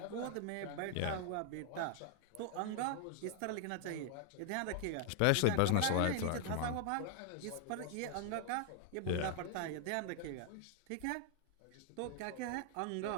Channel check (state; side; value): different; both; correlation 0.00